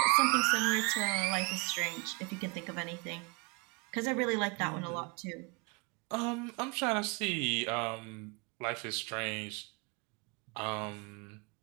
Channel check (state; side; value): quieter; left; 29.4 dB